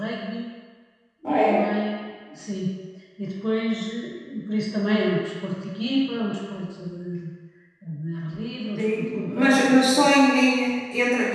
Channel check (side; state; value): both; identical; correlation 1.00